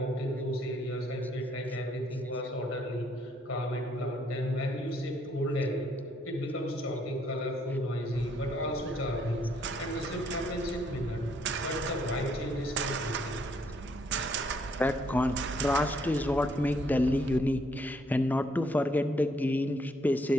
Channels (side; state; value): both; normal; correlation 0.69